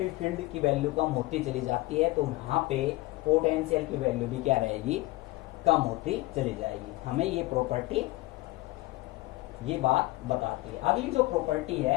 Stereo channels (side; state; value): right; quieter; 20.3 dB